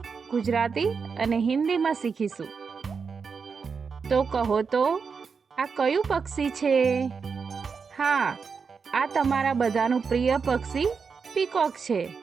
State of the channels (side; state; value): left; quieter; 5.5 dB